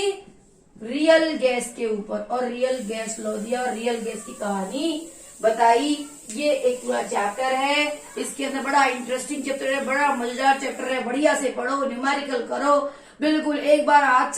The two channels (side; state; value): both; identical; correlation 1.00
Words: रियल गैस के ऊपर, और रियल गैस लॉ दिया और रियल गैस की कहानी बताई। ये एक पूरा चैप्टर है, इसके अंदर बड़ा इंटरेस्टिंग चैप्टर है, बड़ा मजेदार चैप्टर है, बढ़िया से पढ़ो, न्यूमेरिकल करो, बिल्कुल एक बार हाथ